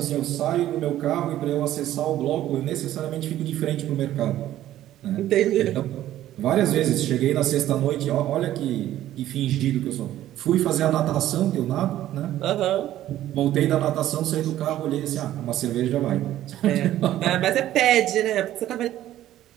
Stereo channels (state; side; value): quieter; left; 13.2 dB